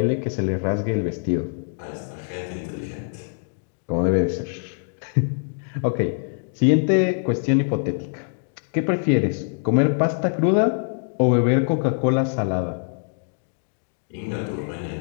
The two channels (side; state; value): right; silent; digital silence